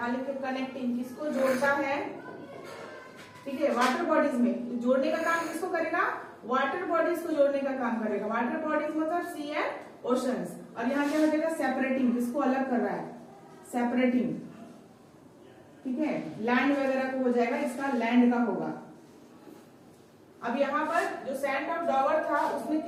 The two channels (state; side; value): identical; both; correlation 1.00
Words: लिखिए कनेक्टिंग, किसको जोड़ता है, ठीक है। वाटर बॉडीज में जोड़ने का काम किसको करेगा? वाटर बॉडीज को जोड़ने का काम करेगा। वाटर बॉडीज मतलब सी एंड ओशंस। और यहाँ क्या हो जाएगा? सेपरेटिंग, किसको अलग कर रहा है? सेपरेटिंग, ठीक है। लैंड वगैरह को हो जाएगा, इसका लैंड का होगा। अब यहाँ पर जो सैंड ऑफ डॉवर था उसने